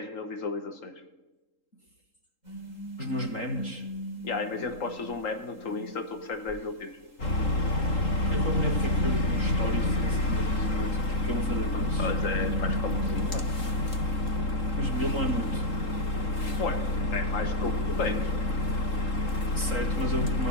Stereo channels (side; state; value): right; late; 3.8 ms